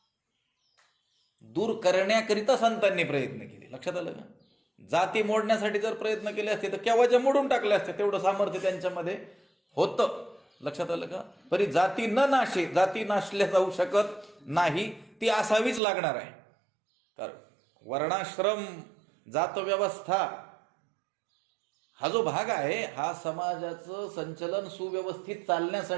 दूर करण्याकरिता संतांनी प्रयत्न केले. लक्षात आलं का? जाती मोडण्यासाठी जर प्रयत्न केले असते तर केव्हाच्या मोडून टाकले असते. तेवढं सामर्थ्य त्यांच्यामध्ये होतं. लक्षात आलं का? तरी जाती न नाशे, जाती नाशल्या जाऊ शकत नाही, ती असावीच लागणार आहे. कारण वर्णाश्रम जात व्यवस्था हा जो भाग आहे, हा समाजाचं संचलन सुव्यवस्थित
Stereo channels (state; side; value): drops out; left; at 15.8 s